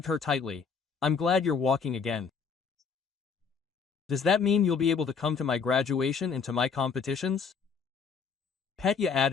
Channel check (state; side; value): quieter; right; 5.8 dB